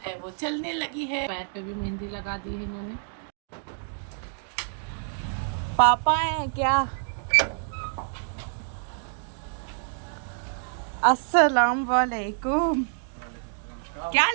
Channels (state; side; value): silent; left; digital silence